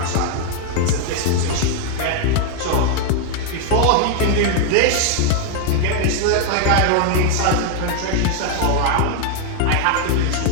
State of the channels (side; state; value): both; different; correlation 0.00